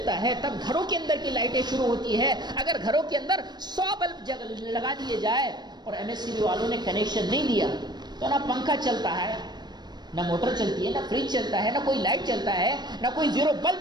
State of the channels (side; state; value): left; late; 0.21 ms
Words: ہے تب گھروں کے اندر کی لائٹیں شروع ہوتی ہے. اگر گھروں کے اندر 100 بلب لگا دیے جائے اور ایم ایس سی بی والوں نے کنیکشن نہیں دیا تو نہ پنکھا چلتا ہے، نہ موٹر چلتی ہے، نہ فریج چلتا ہے، نہ کوئی لائٹ چلتا ہے، نہ کوئی زیرو